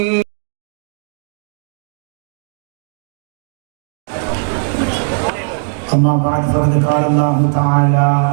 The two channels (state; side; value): silent; left; digital silence